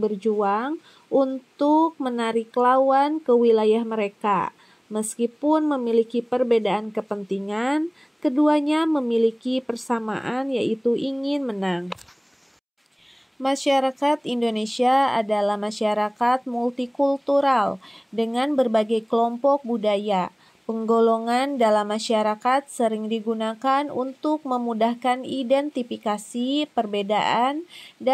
berjuang untuk menarik lawan ke wilayah mereka. Meskipun memiliki perbedaan kepentingan, keduanya memiliki persamaan yaitu ingin menang. Masyarakat Indonesia adalah masyarakat multikultural dengan berbagai kelompok budaya. Penggolongan dalam masyarakat sering digunakan untuk memudahkan identifikasi perbedaan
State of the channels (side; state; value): both; identical; correlation 1.00